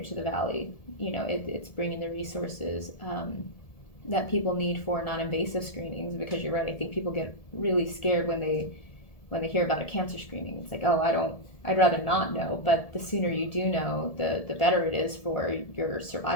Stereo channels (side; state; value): right; late; 1.7 ms